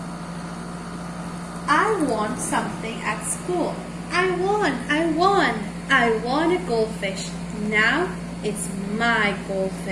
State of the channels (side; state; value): both; identical; correlation 1.00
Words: I won something at school. I won a goldfish. Now it's my